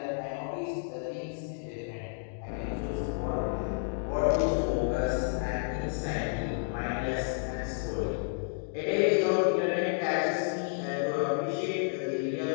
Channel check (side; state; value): right; silent; digital silence